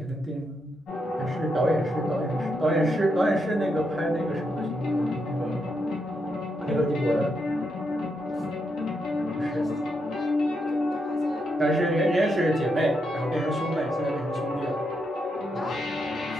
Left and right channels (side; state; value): both; normal; correlation 0.81